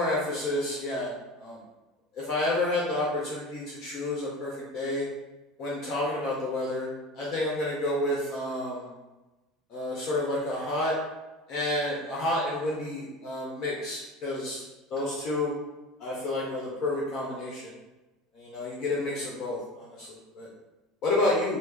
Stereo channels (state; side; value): normal; both; correlation 0.33